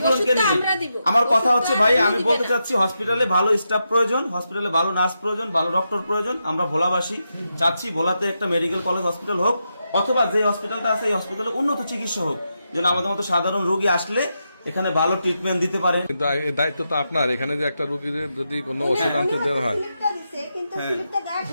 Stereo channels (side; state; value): both; inverted; correlation -0.86